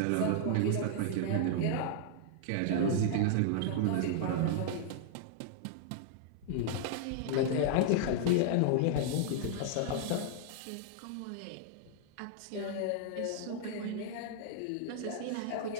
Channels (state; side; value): different; both; correlation -0.01